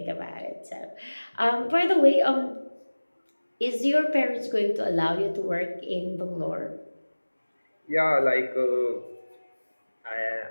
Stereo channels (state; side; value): inverted; both; correlation -1.00